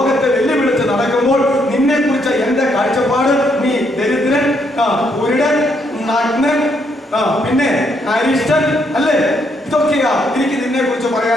വെല്ലുവിളിച്ച് നടക്കുമ്പോൾ നിന്നെ കുറിച്ച് എന്റെ കാഴ്ചപ്പാട് നീ ദരിദ്രൻ, കുരുടൻ, നഗ്നൻ, പിന്നെ അരിഷ്ടൻ അല്ലേ, ഇതൊക്കെയാ എനിക്ക് നിന്നെ കുറിച്ച്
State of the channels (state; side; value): normal; both; correlation 0.74